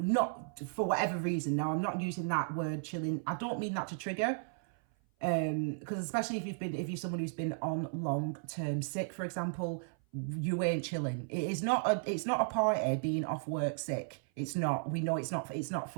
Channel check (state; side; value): silent; left; 55 dB below the other